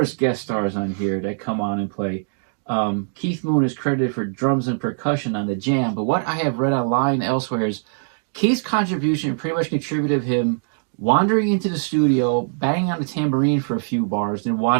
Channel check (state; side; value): silent; left; digital silence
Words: guest stars on here that come on and play. Keith Moon is credited for drums and percussion on the jam, but what I have read online elsewhere is Keith's contribution pretty much contributed him wandering into the studio, banging on the tambourine for a few bars, then